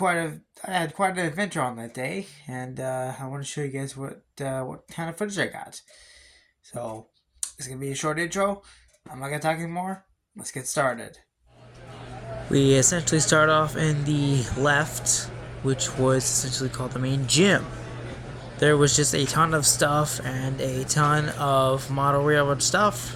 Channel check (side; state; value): both; identical; correlation 1.00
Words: an adventure on that day, and I want to show you guys what kind of footage I got. So it's gonna be a short intro. I'm not gonna talk anymore. Let's get started. We essentially start off in the left, which was essentially called the main gym. There was just a ton of stuff and a ton of model railroad stuff